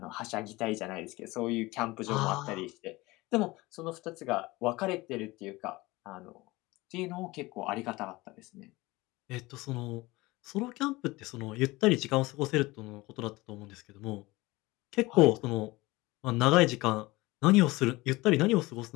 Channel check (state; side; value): quieter; right; 21.1 dB